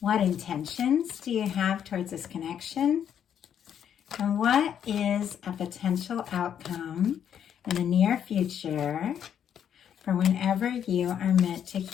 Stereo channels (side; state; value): right; quieter; 9.0 dB